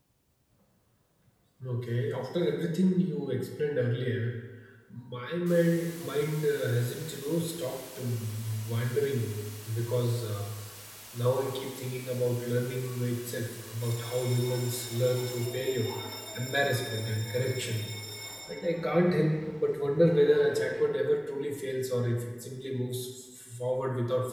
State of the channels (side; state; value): both; identical; correlation 1.00